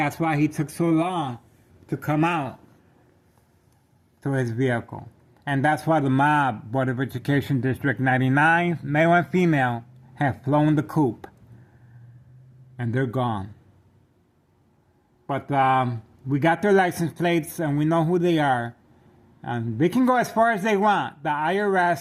why he took so long to come out to his vehicle. And that's why the mob, Board of Education District 99, male and female, have flown the coop. And they're gone. But we got their license plates and we know who they are. And they can go as far as they want. The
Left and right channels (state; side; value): identical; both; correlation 1.00